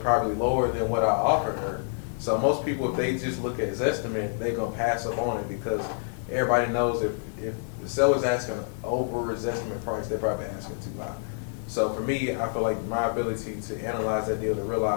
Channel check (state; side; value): silent; right; digital silence